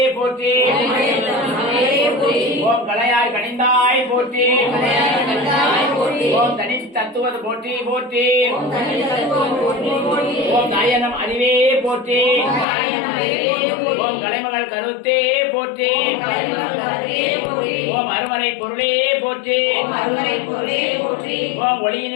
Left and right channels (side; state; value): right; drops out; at 12.7 s